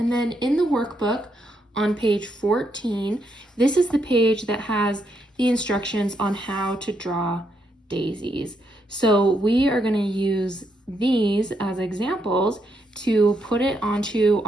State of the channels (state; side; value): normal; both; correlation 0.78